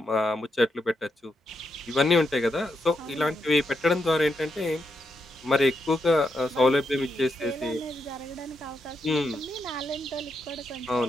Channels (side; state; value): both; normal; correlation 0.82